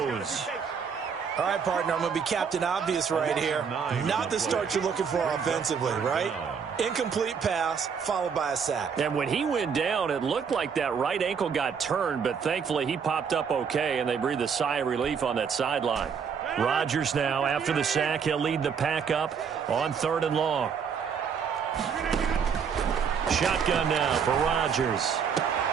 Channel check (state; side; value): quieter; left; 6.6 dB